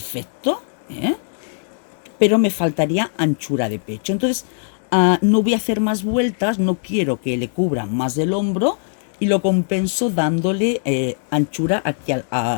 pero me faltaría anchura de pecho. Entonces, no voy a hacer más vueltas, no quiero que le cubra más del hombro y lo compenso dándole anchura aquí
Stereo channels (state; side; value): silent; right; digital silence